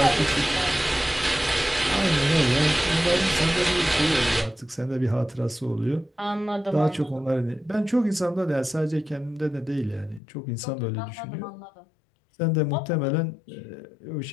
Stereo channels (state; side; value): drops out; right; at 10.2 s